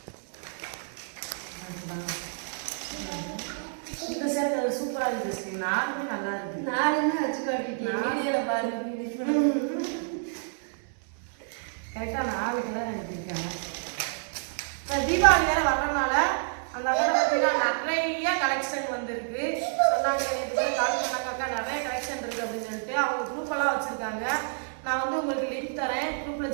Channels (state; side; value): silent; left; 59 dB below the other